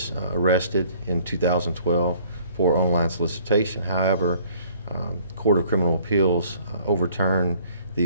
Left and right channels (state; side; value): inverted; both; correlation -0.57